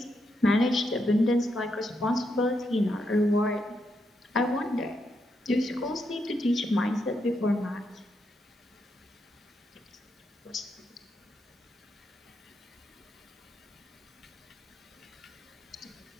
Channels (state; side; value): normal; both; correlation 0.81